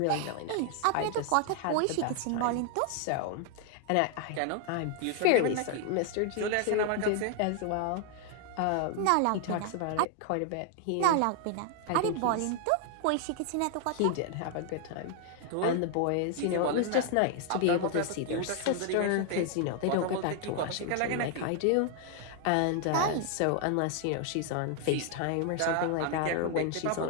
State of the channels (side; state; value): both; different; correlation 0.00